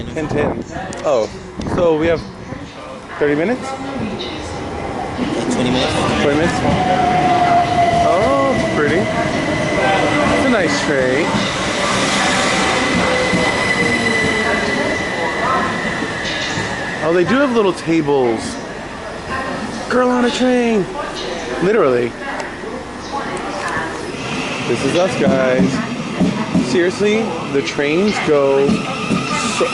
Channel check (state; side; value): identical; both; correlation 1.00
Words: 10:10. Oh, so we have 30 minutes? Like 20 minutes. 20 minutes? Oh, it's pretty. It's a nice train. Oh, they do have little tables. Girl on a train. Literally. This is us, guys. Seriously, the trains go, so,